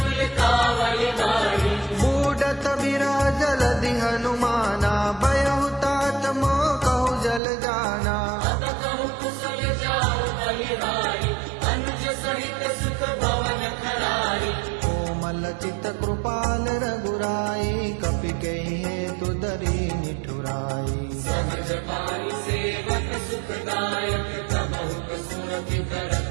कावल गाढ़ी बूढ़त बिराजल दि हनुमाना बयहु तात मोह कहु जल जाना अब कहु कुशल जाओ बलिहारी अनुज सहित सुख भवन खरारी कोमल चित कृपाल रघुराई कपि कहि हेतु दरी निठुराई सहज पानी सेवक सुखदायक तबहु सुरति करत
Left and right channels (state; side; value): drops out; left; at 7.4 s